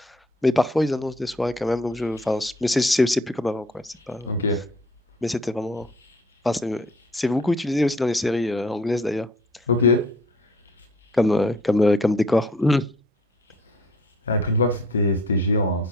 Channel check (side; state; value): both; normal; correlation 0.54